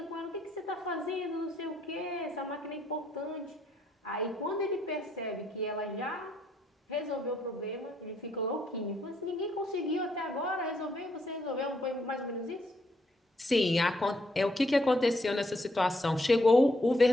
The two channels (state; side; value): normal; both; correlation 0.73